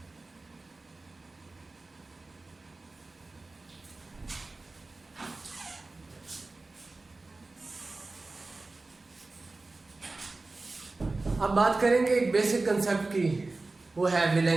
अब बात करेंगे एक बेसिक कंसेप्ट की, वो है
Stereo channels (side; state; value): left; quieter; 3.4 dB